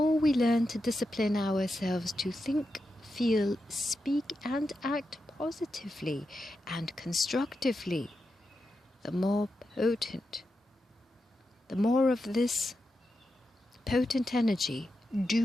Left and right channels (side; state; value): both; normal; correlation 0.88